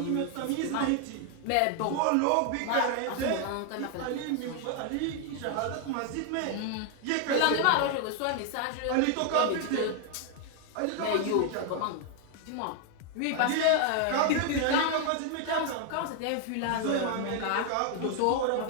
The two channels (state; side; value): different; both; correlation 0.00